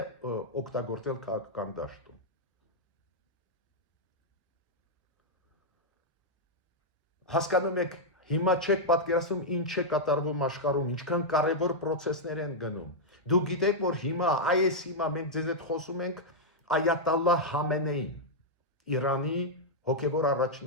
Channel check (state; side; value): normal; both; correlation -0.05